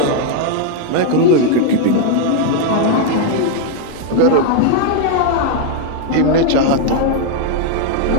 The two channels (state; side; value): different; both; correlation -0.01